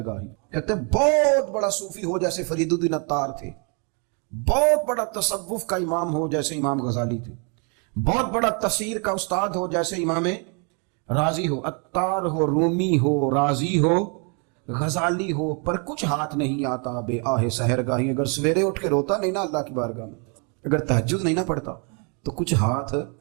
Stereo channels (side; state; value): left; quieter; 36.8 dB